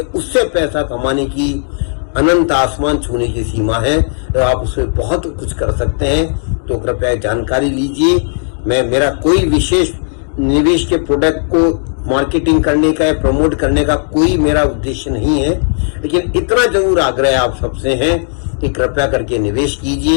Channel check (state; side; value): silent; right; digital silence